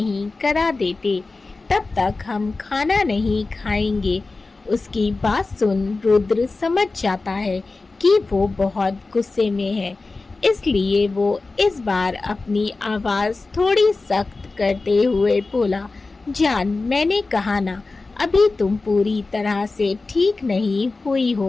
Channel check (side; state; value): right; quieter; 3.6 dB